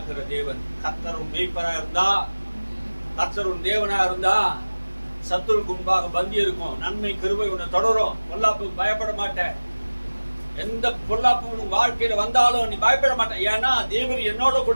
தேவன். கர்த்தரும் மேய்ப்பரா இருந்தா, கர்த்தரும் தேவனா இருந்தா சத்துருக்கு முன்பாக பந்தி இருக்கும். நன்மை கிருபை உன்னை தொடரும். பொல்லாப்புக்கு பயப்பட மாட்டேன். எந்த பொல்லாப்பு வாழ்க்கையில வந்தாலும் நீ பயப்பட மாட்டேன். ஏன்னா தேவன் என்னோட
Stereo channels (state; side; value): inverted; both; correlation -1.00